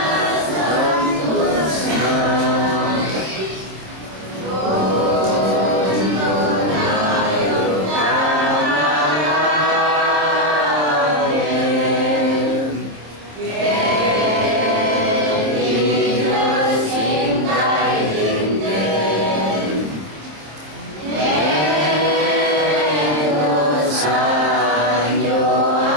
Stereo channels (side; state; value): left; late; 26 ms